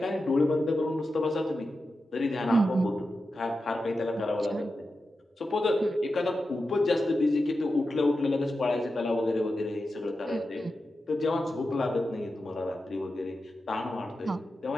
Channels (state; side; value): normal; both; correlation 0.91